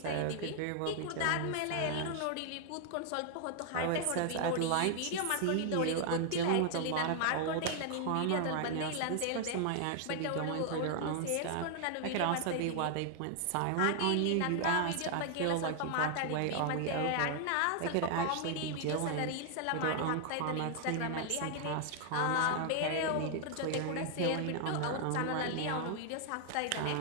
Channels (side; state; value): both; different; correlation 0.00